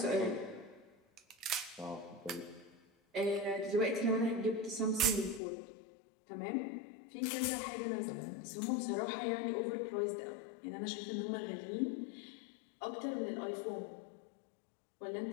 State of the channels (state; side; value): drops out; right; at 5.4 s